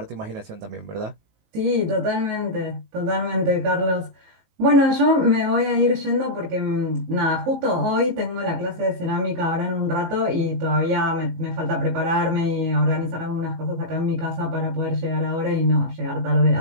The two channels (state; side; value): late; left; 19 ms